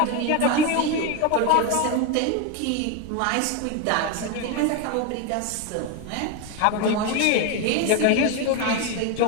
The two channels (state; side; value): different; both; correlation 0.02